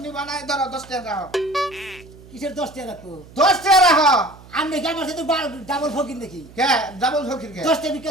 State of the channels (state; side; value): noise; right; hum, 21 dB below the sound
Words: নিবা না, ধরো 10 টাকা রাখো। কিসের 10 টাকা রাখবো? 10 টাকা রাখো। আপনি কি আমার সাথে ডাবল ফকির নাকি? কে ডাবল ফকির কে? 10 টাকা ভিক্ষা